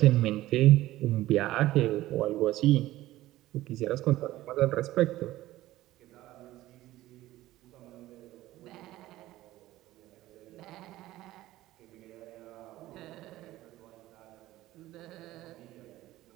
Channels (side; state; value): left; quieter; 16.0 dB